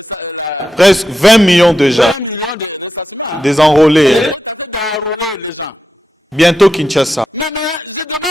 presque 20 millions de gens. 20 millions de ressassements. Hein. Des enrôlés. Il est en train d'enrôler les gens. Bientôt Kinshasa. Mais maintenant, je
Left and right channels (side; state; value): both; normal; correlation 0.88